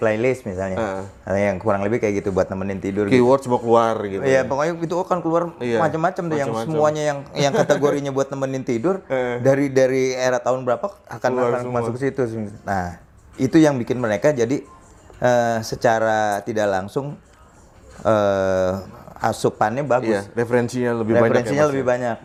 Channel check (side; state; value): both; identical; correlation 1.00